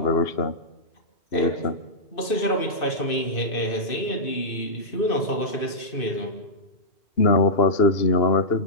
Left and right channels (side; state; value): right; late; 2.6 ms